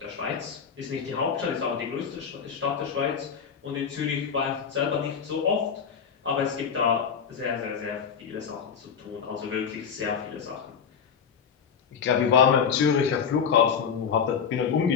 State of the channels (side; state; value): right; quieter; 6.8 dB